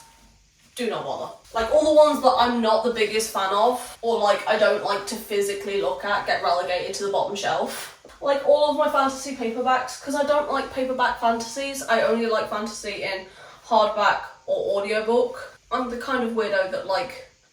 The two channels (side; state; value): both; identical; correlation 1.00